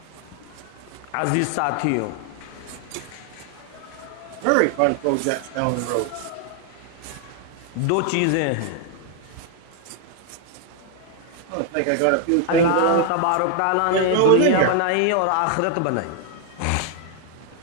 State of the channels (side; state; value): both; different; correlation 0.00